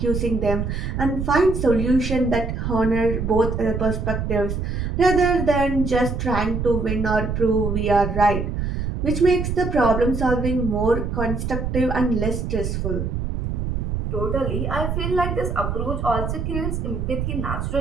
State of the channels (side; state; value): right; noise; rumble, 2 dB below the sound